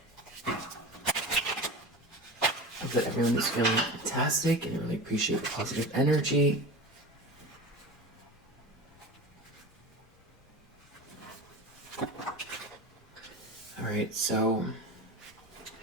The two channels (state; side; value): normal; both; correlation 0.30